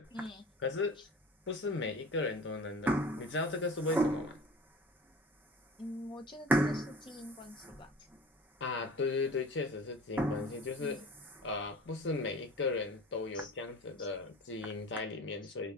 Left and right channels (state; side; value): normal; both; correlation 0.41